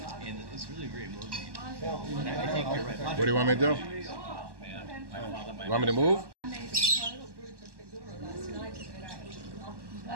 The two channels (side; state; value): left; late; 1.1 ms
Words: And it's really very moving. And I think you're right. What do you want me to do? Oh, man. You want me to move?